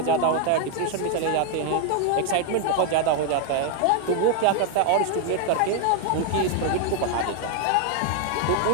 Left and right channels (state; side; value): different; both; correlation 0.00